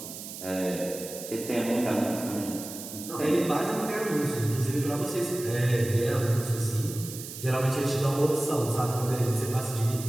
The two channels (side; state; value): right; noise; hiss, 11 dB below the sound